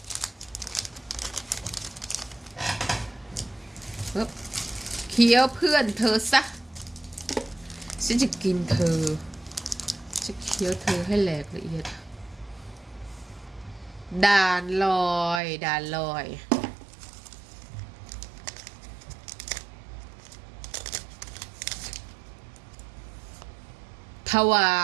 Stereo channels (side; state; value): left; drops out; at 15.4 s